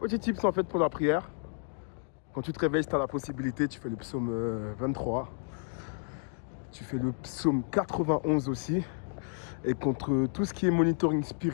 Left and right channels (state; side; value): silent; right; 57 dB below the other